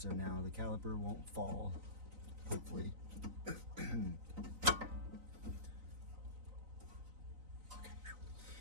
now the caliper won't fall, hopefully.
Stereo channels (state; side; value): late; left; 3.9 ms